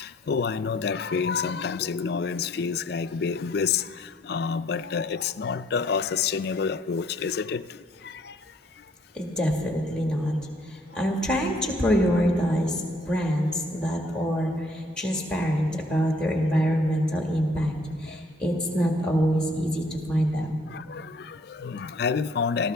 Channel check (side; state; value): both; normal; correlation 0.60